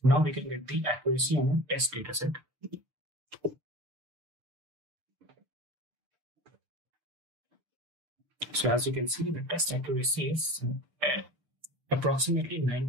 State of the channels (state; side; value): late; left; 6.7 ms